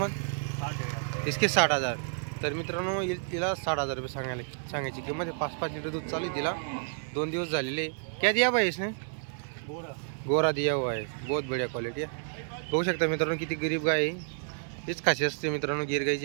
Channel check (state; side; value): silent; left; 58 dB below the other